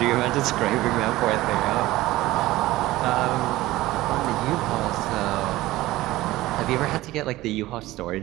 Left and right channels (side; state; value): left; quieter; 17.4 dB